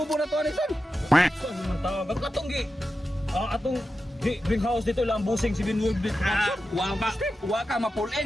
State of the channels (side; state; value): both; normal; correlation 0.91